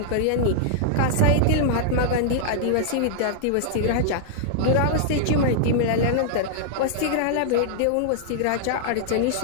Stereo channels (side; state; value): both; different; correlation -0.01